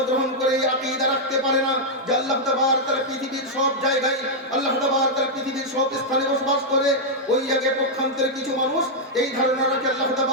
করে এই আকীদা রাখতে পারে না যে আল্লাহ তাবারক তাআলা পৃথিবীর সব জায়গায়, আল্লাহ তাবারক তাআলা পৃথিবীর সব স্থানে বসবাস করে। ওই আগে পক্ষান্তরে কিছু মানুষ এই ধারণা রাখে আল্লাহ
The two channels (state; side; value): normal; both; correlation -0.04